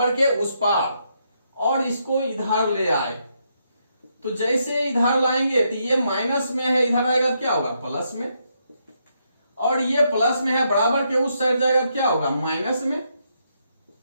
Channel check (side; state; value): both; inverted; correlation -0.78